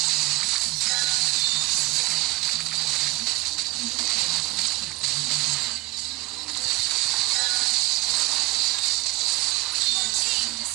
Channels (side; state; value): left; quieter; 23.1 dB